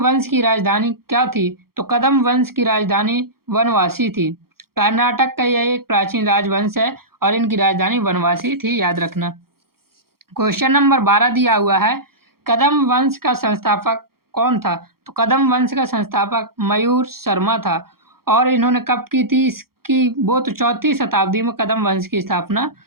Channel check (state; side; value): late; left; 0.94 ms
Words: की राजधानी क्या थी? तो कदम्ब वंश की राजधानी वनवासी थी। कर्नाटक का यह एक प्राचीन राजवंश है और इनकी राजधानी वनवासी थी। याद रखना। क्वेश्चन नंबर 12 दिया हुआ है, कदम्ब वंश का संस्थापक कौन था? तो कदम्ब वंश का संस्थापक मयूर शर्मा था। और इन्होंने कब की थी? इसकी वो तो 4वीं शताब्दी में कदम्ब वंश की स्थापना